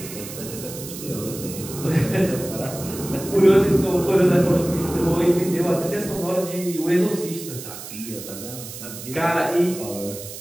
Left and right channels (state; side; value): noise; right; hiss, 12 dB below the sound